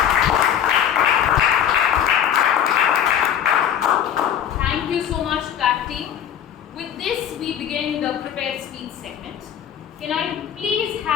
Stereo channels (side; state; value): right; quieter; 9.6 dB